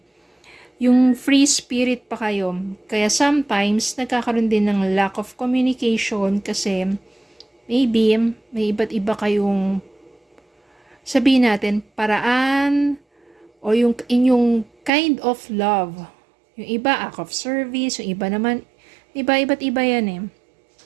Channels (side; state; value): left; drops out; at 14.9 s